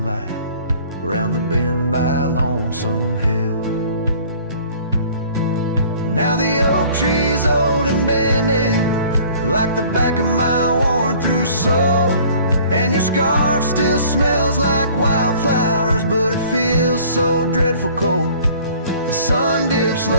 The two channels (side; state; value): both; inverted; correlation -0.51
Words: around the bend by Lonesome Hill. Now the oak tree's old and bending, like the back of my worn-through soul, and your scarf still smells like wildflowers, but it feels so dreadful cold. The sun dips